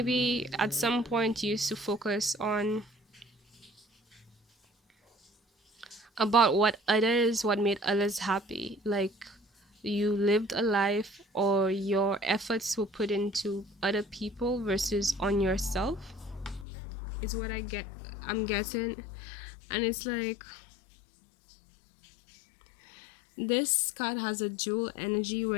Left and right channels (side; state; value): right; drops out; at 16.7 s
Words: at some point you used to focus on about what made others happy. Like you lived a life or your efforts were put into other people versus on yourself, is what I'm getting. And it's like this card has a dual energy